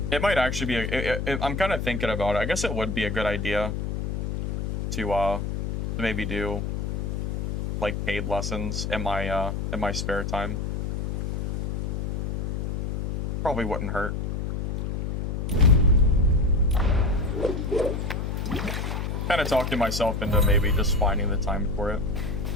it might actually be I'm kind of thinking about it. I guess it would be a good idea to maybe do like paid lessons in my spare time. Probably wouldn't hurt. Kind of talking myself into maybe just finding the time for it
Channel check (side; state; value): left; noise; hum, 2 dB below the sound